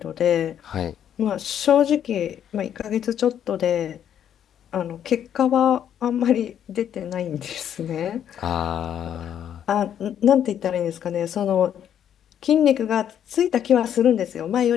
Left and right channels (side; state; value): right; quieter; 9.6 dB